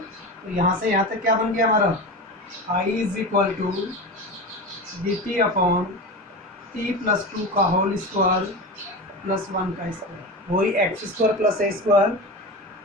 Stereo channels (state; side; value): normal; both; correlation 0.26